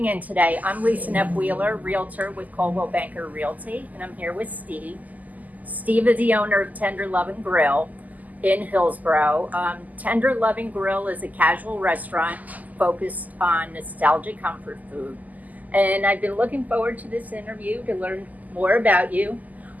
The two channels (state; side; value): late; left; 0.080 ms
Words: in today. I'm Lisa Neff-Wheeler, Realtor with Coldwell Banker Realty, and I'm here with Steve. Steve is the owner of Tender Lovin Grill in Hillsborough. Tender Lovin Grill is a casual restaurant focused on nostalgic comfort food. And I've been looking forward to this interview to learn more about you.